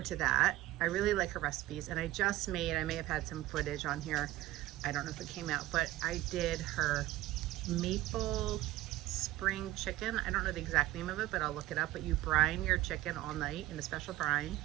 to that. I really like her recipes, and I may have had some footage on here. I don't know if it came out, but I did her maple spring chicken. I don't know the exact name of it, but I'll look it up. But you brine your chicken all night in a special brine,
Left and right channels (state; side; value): quieter; left; 16.3 dB